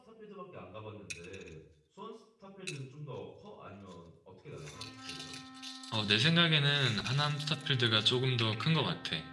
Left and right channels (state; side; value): identical; both; correlation 1.00